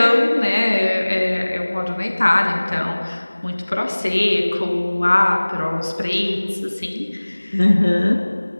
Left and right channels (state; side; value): inverted; both; correlation -1.00